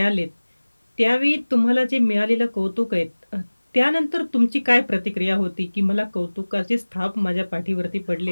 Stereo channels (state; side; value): inverted; both; correlation -1.00